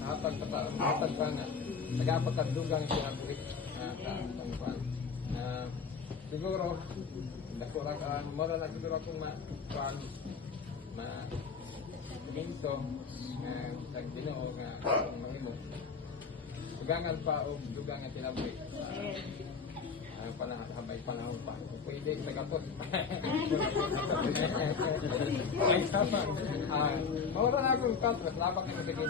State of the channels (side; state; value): right; quieter; 5.6 dB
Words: pa nga nagapagdugang siya buhit siguro dako ra ka mara na siguro akong minto sa Ginoo nga mahimo. Dugangan pa o dugangan tinaboy. Habay panahon pa. Pwede nagapot. Ay sama. Mawala na akong contract. Labang na sa